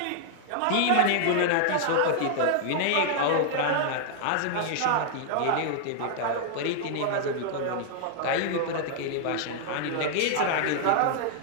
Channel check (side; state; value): both; different; correlation 0.00